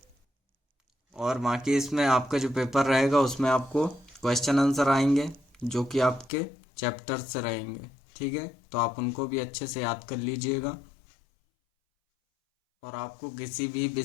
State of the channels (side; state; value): right; drops out; at 6.3 s